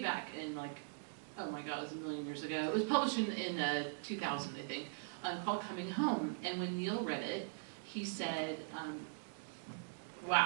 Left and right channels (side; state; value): left; silent; digital silence